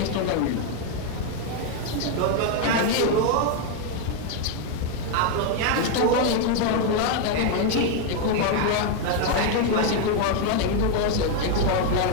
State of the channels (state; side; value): different; both; correlation 0.01